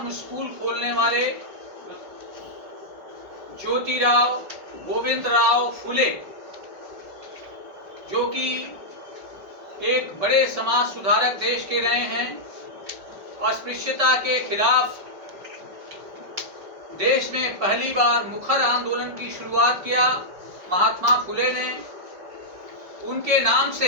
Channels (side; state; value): left; late; 5.3 ms